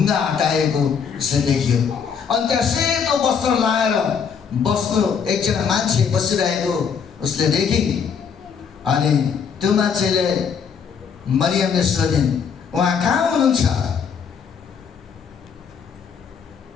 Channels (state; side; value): quieter; right; 6.7 dB